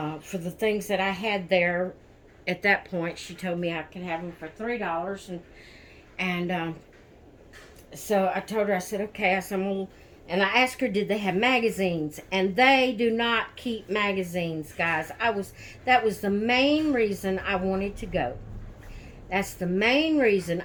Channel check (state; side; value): identical; both; correlation 1.00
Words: for the things that I had there at that point, she told me I could have them for $3, and so I told her, I said, okay. I said, and I asked her, did they have magazines? And they do not keep magazines, guys. That was the main reason I wanted to go. That's the main reason